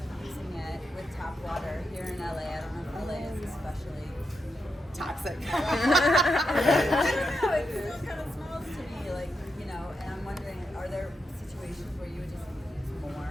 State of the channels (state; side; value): normal; both; correlation 0.85